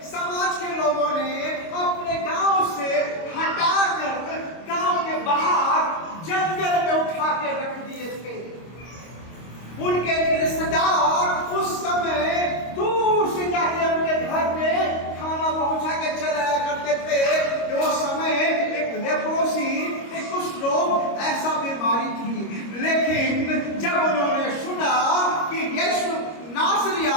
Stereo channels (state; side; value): late; right; 25 ms